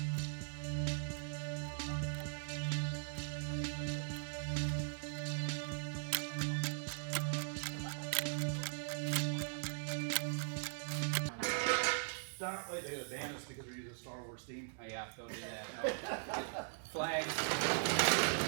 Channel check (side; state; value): left; silent; digital silence